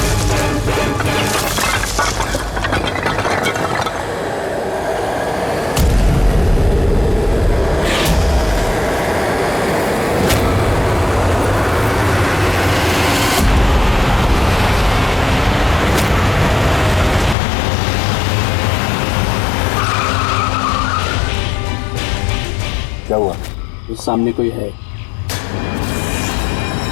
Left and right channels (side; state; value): right; drops out; at 17.4 s